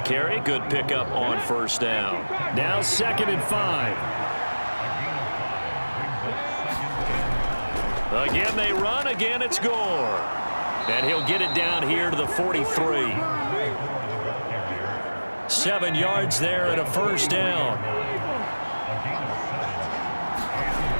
Good pickup on 1st down. Now 2nd and 5. Again they run. Again it's Gore. And he'll get it down here to the 43. 7 yards there and a 1st down.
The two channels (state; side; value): inverted; both; correlation -1.00